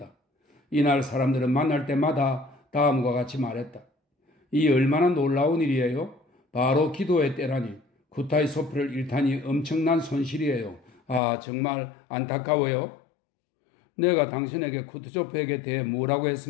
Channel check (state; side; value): drops out; right; at 11.2 s